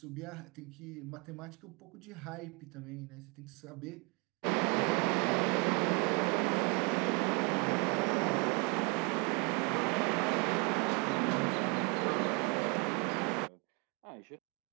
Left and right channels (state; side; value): quieter; left; 31.8 dB